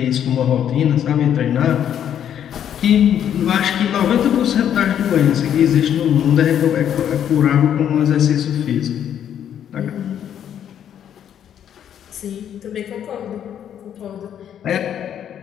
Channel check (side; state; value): right; quieter; 9.6 dB